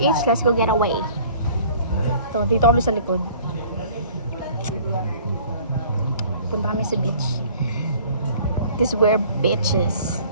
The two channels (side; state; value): both; inverted; correlation -0.51